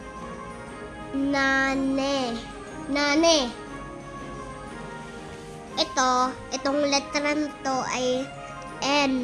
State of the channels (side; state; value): both; identical; correlation 1.00